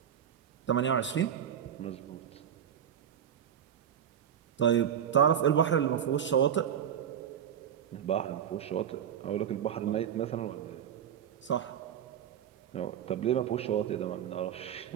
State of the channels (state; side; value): quieter; left; 9.0 dB